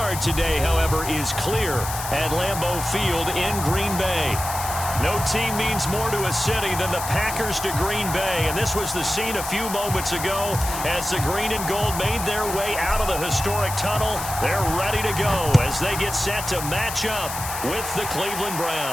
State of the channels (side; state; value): left; noise; hiss, 7 dB below the sound